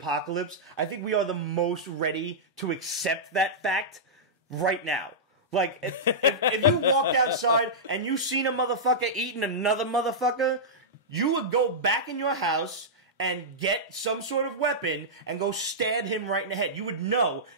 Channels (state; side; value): normal; both; correlation -0.13